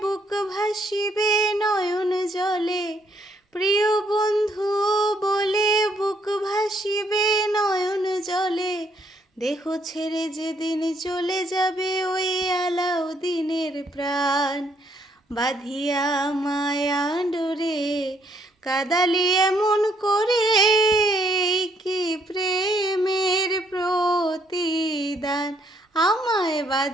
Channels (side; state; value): both; normal; correlation 0.70